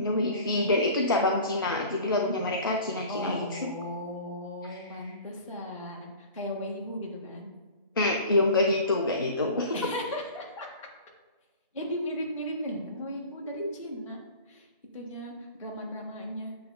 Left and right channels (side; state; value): both; inverted; correlation -0.40